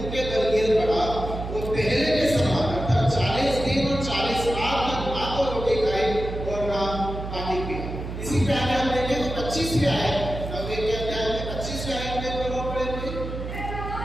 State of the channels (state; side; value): noise; right; hum, 7 dB below the sound